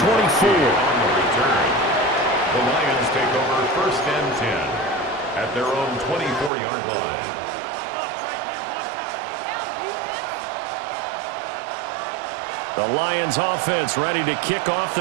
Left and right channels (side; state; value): left; drops out; at 6.5 s